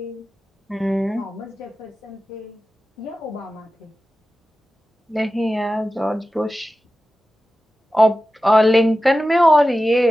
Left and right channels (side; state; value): both; normal; correlation 0.94